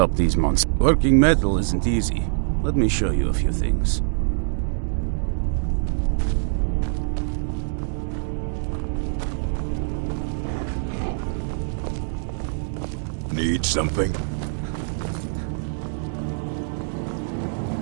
these monsters. Working metal isn't easy. Let me show you a few things. Need something?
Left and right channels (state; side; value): silent; left; digital silence